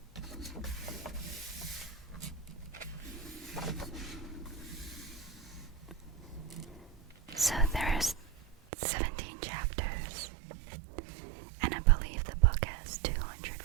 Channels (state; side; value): drops out; left; at 8.6 s